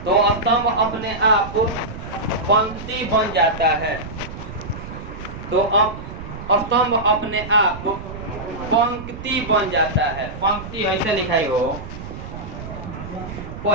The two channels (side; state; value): right; noise; rumble, 11 dB below the sound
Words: तो स्तंभ अपने आप पंक्ति बन जाता है, तो अब स्तंभ अपने आप पंक्ति बन जाता है। पंक्ति ऐसे लिखाई हो,